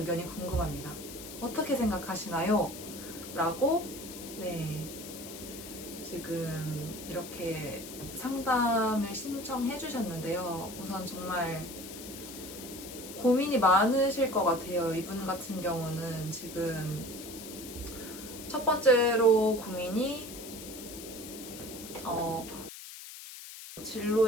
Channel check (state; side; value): noise; left; hiss, 12 dB below the sound